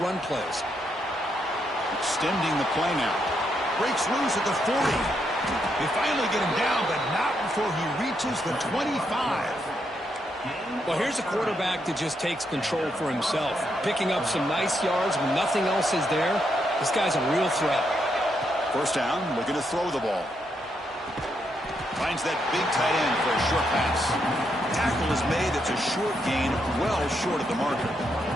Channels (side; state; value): both; normal; correlation 0.79